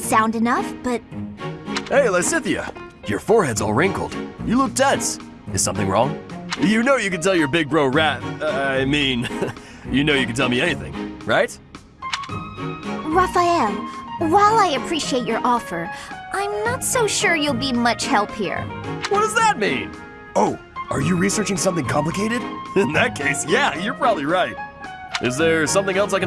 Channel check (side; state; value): both; identical; correlation 1.00